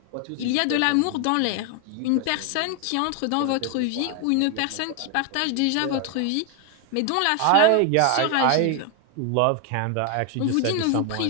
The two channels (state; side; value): different; both; correlation 0.01